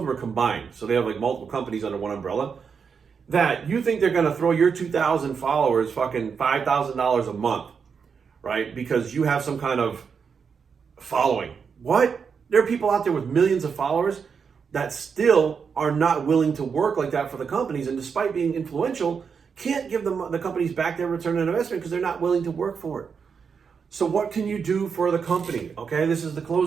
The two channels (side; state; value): left; quieter; 6.1 dB